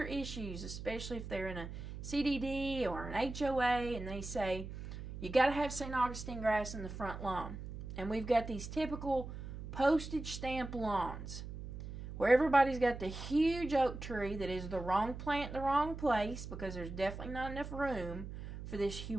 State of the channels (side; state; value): right; noise; hum, 9 dB below the sound